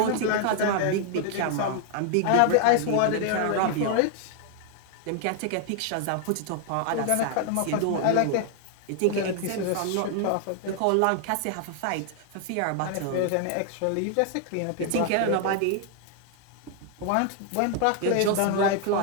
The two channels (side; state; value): both; different; correlation 0.00